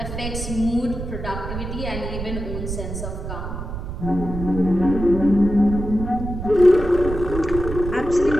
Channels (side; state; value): right; noise; rumble, 6 dB below the sound